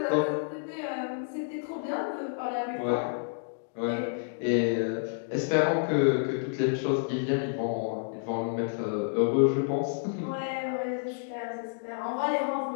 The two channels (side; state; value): right; silent; digital silence